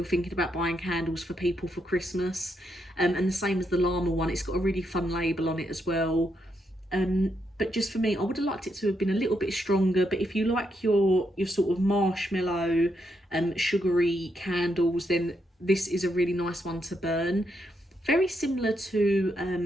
thinking about buying candles for people for Christmas. And the same as the llama one, it's got a really fun label on it as well. But just for me, I would have liked it to have been a little bit stronger. But if you like your sort of marshmallow, sugary candles, then this is a really nice one to burn. Very similar to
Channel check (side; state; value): both; normal; correlation 0.80